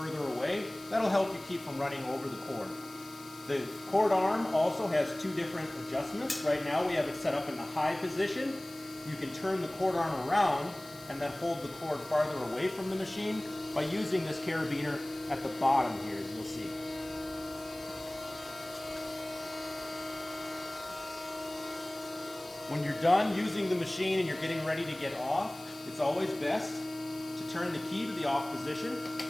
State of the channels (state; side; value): noise; left; hiss, 19 dB below the sound